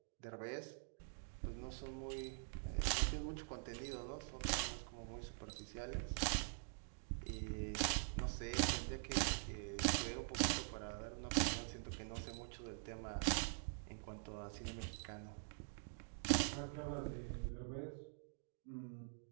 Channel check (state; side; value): silent; left; digital silence